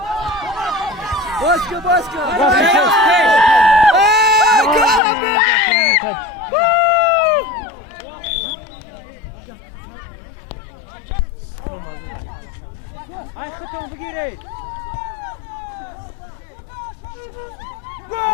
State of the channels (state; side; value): drops out; right; at 5.0 s